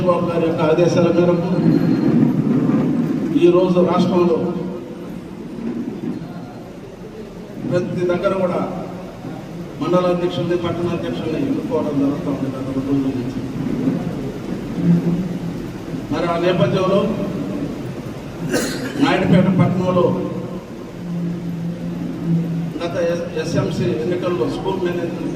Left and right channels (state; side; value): identical; both; correlation 1.00